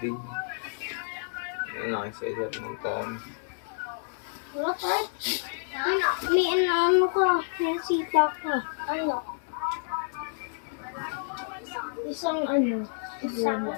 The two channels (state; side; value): silent; right; digital silence